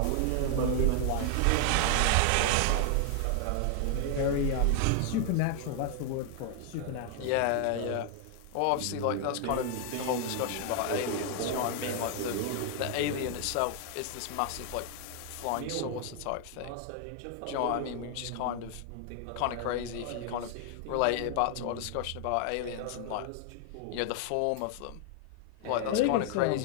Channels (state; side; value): different; both; correlation 0.00